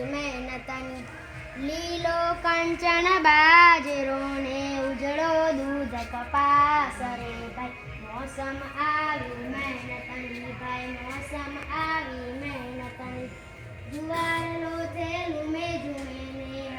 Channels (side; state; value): both; identical; correlation 1.00